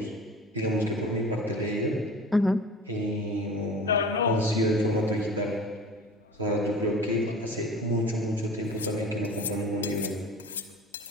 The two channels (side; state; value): both; normal; correlation 0.40